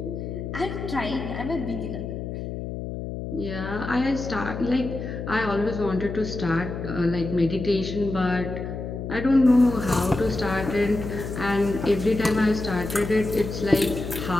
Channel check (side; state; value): left; noise; hum, 6 dB below the sound